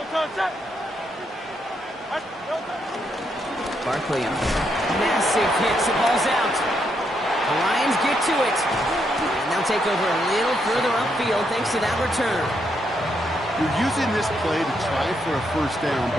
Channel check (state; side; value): normal; both; correlation 0.78